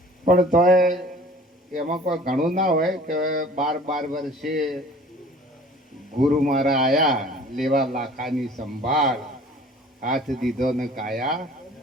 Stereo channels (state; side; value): normal; both; correlation 0.48